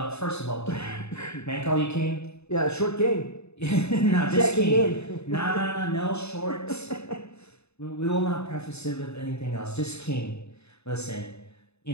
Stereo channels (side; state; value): right; late; 0.80 ms